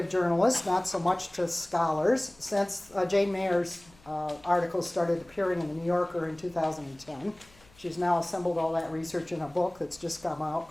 journalists, not so much to scholars, since Jane Mayer's articles started appearing in the New Yorker in 2010. She's now assembled all that research in a book that's just come out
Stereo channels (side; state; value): left; noise; hum, 27 dB below the sound